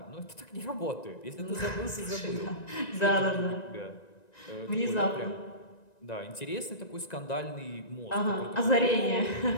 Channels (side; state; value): right; late; 1.9 ms